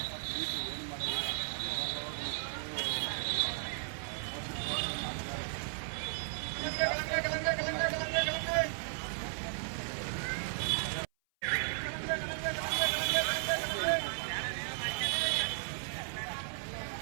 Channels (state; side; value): silent; left; 54 dB below the other